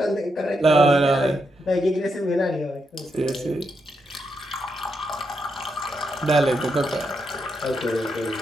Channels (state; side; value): normal; both; correlation 0.82